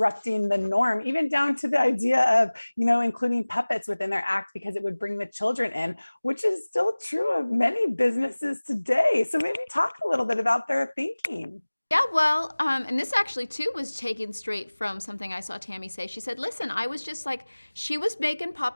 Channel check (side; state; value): both; inverted; correlation -1.00